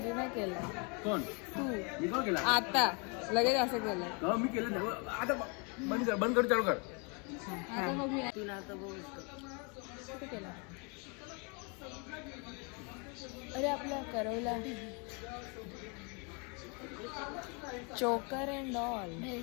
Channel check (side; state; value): right; quieter; 33.5 dB